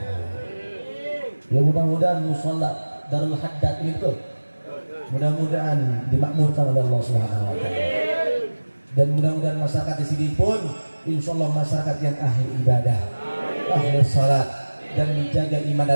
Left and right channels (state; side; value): inverted; both; correlation -1.00